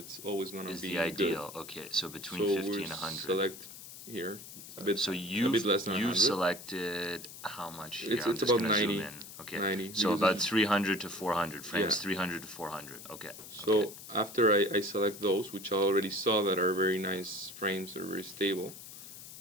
always going to Is be the ideal. Good. Okay, so between So 50 we and 100. select here a bit. So a you bit less than you 100. selected how much? It's I'm just about gonna 90, Zoom in. Okay. 90, So because about it's- 300 to 400 frames. Yeah. 300 to 400. Okay. So okay. after I select those, which I already saw that are very nice frames, they're very stable,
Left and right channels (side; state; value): left; noise; hiss, 14 dB below the sound